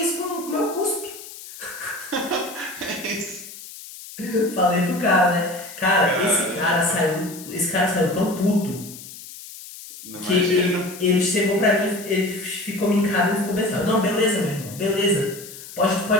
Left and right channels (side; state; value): left; noise; hiss, 15 dB below the sound